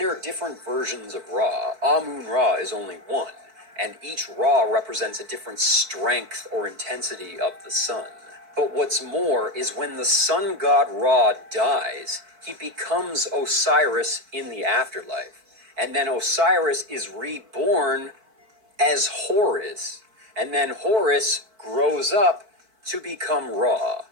are different versions of Ra. Amun-Ra is only one, and each Ra represents a different strength or intensity of the sun. But what's more is when the sun god Ra dies, he becomes Osiris in the afterlife. And then Osiris is reborn as Horus. And then Horus grows up to become Ra.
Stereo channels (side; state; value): left; late; 4.5 ms